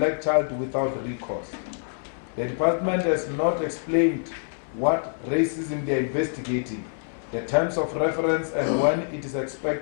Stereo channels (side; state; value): right; silent; 61 dB below the other